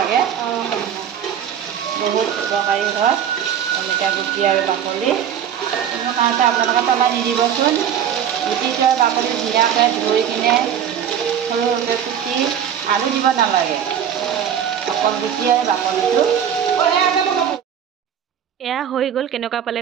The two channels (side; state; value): left; quieter; 9.0 dB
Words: বহুত উপকাৰী হয় অমিতা গুটি আৰু বাকলি। কোনো কাৰণতে আপোনালোকে পেলাই নিদিবচোন। গুটিটো আৰু বাকলি ধুনীয়াকৈ ধুই কিনে সৰু সৰুকৈ কুটি, আলু দিব নালাগে, অকল গুটি আৰু বাকলিটো। এয়া হৈ গ'ল। কেনেকুৱা পালে